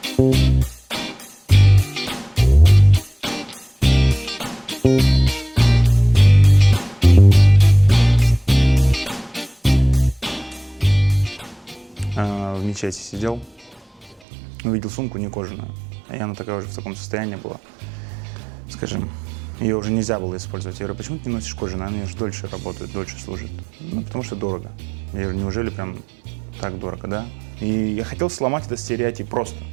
мечети сидел, увидел сумку не кожаную, и она такая уже в таком состоянии была, скажем, ее уже нельзя было использовать. Я говорю, почему ты не носишь кожаную? Она же дольше работает, дольше служит. Ну, потому что дорого. Я говорю, неужели прям так дорого, да? И я хотел сломать этот стереотип просто,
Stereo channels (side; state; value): left; drops out; at 14.2 s